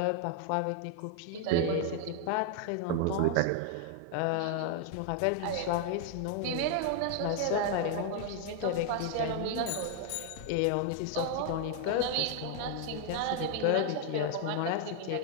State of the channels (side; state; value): both; different; correlation 0.00